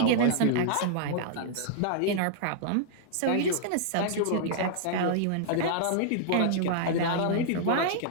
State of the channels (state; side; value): different; both; correlation -0.01